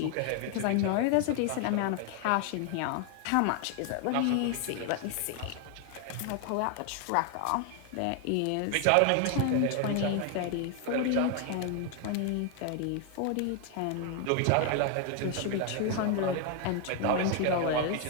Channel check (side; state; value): both; different; correlation 0.01